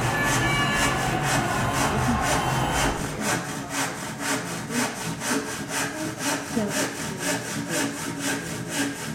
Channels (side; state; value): both; identical; correlation 1.00